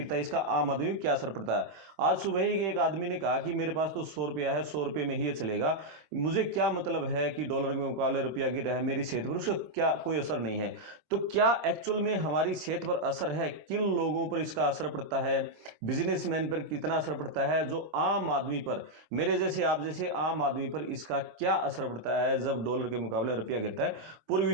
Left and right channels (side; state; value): left; late; 25 ms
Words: है, इसका आम आदमी को क्या असर पड़ता है। आज सुबह ही एक आदमी ने कहा कि मेरे पास तो 100 रुपया है, 100 रुपये में ही ये चलेगा, मुझे क्या मतलब है कि डॉलर के मुकाबले रुपया गिर रहा है, मेरी सेहत पर उसका क्या कोई असर नहीं है। तो क्या एक्चुअल में हमारी सेहत पर असर है? किन लोगों पर इसका असर पड़ता है? बिजनेसमैन पर कितना असर पड़ता है? जो आम आदमी पर, मेरे जैसे आप जैसे आम आदमी पर इसका क्या असर पड़ता है जब डॉलर के मुकाबले रुपया गिरता है? पूरी